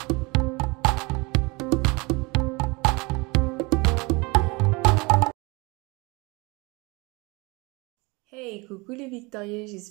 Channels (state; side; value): quieter; left; 25.9 dB